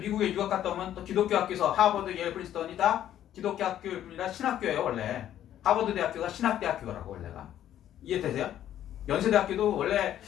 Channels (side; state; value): right; quieter; 11.4 dB